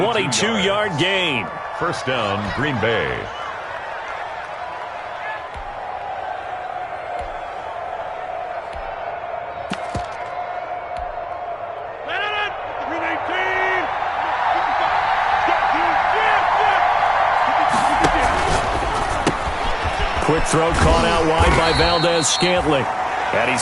gain. First down, Green Bay. Quick throw caught out wide by Valdez-Scantling. And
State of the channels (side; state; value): both; identical; correlation 1.00